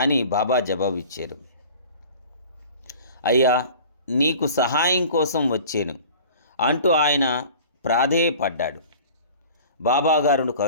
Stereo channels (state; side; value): inverted; both; correlation -0.44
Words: బాబా జవాబిచ్చారు. అయ్యా, నీకు సహాయం కోసం వచ్చాను అంటూ ఆయన ప్రాధేయపడ్డాడు. బాబాగారును